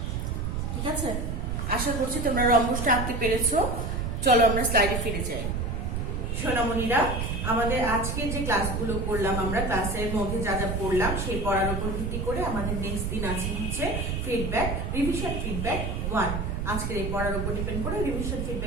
ঠিক আছে। আশা করছি তোমরা রম্বসটা আঁকতে পেরেছো। চলো আমরা স্লাইডে ফিরে যাই। সোনামণিরা, আমাদের আজকের যে ক্লাসগুলো করলাম, আমরা ক্লাসের মধ্যে যা যা পড়লাম সেই পড়ার উপর ভিত্তি করে আমাদের নেক্সট দিন আছে হচ্ছে ফিডব্যাক, রিভিশন ফিডব্যাক 1। আজকের এই পড়ার উপর ডিপেন্ড করে রিভিশন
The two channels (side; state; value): right; noise; rumble, 2 dB below the sound